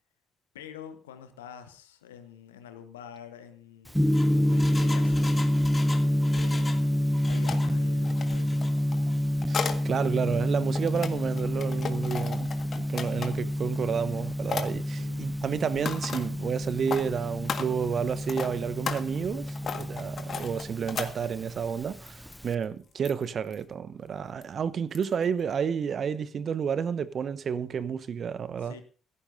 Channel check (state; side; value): normal; both; correlation 0.89